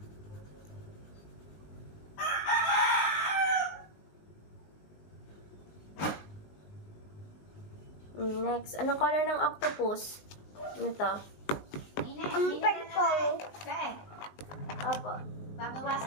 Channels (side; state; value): right; late; 19 ms